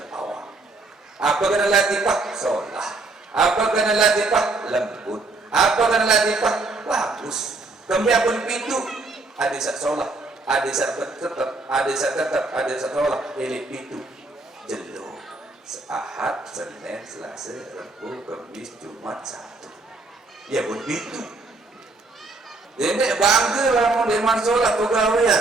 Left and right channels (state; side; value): quieter; left; 3.4 dB